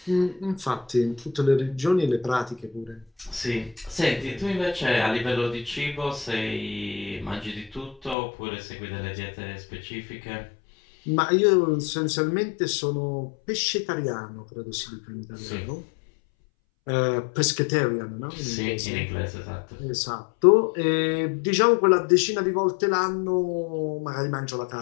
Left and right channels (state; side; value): drops out; right; at 8.2 s